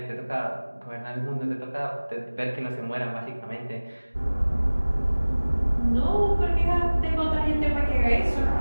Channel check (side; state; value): both; inverted; correlation -1.00